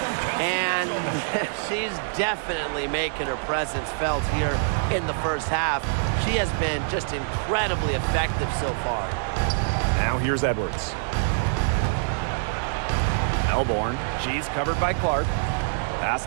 And she's definitely making her presence felt here in the first half. She has been just incredibly effective so far. Now here's Edwards. Melbourne. She's covered by Clark. Pass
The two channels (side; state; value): left; silent; digital silence